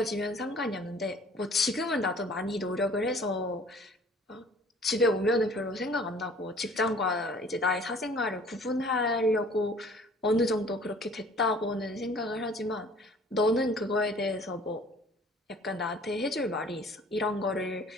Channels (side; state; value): both; normal; correlation 0.52